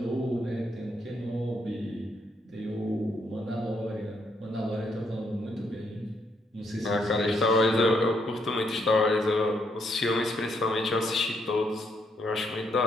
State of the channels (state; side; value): normal; both; correlation 0.75